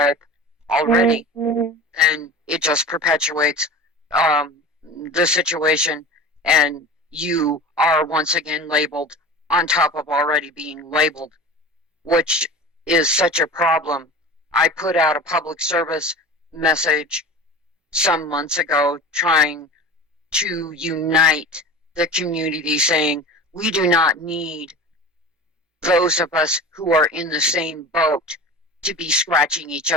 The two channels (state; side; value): normal; both; correlation 0.36